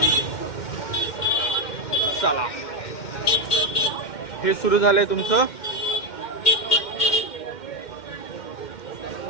चला, हे सुरू झालंय तुमचं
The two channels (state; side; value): late; right; 2.1 ms